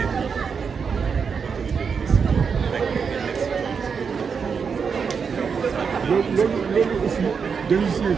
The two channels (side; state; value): left; quieter; 6.0 dB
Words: loolu aussi dañu si